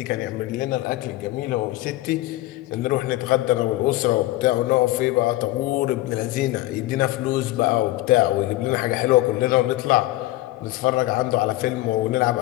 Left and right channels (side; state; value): right; quieter; 17.1 dB